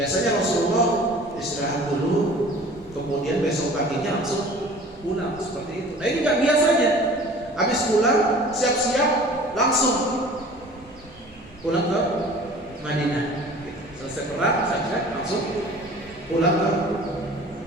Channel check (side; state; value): both; normal; correlation 0.45